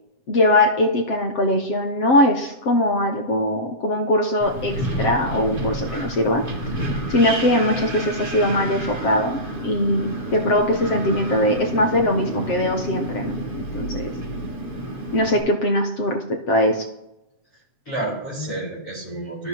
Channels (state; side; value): late; right; 7.6 ms